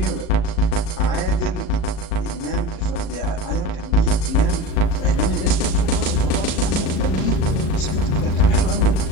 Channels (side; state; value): right; late; 38 ms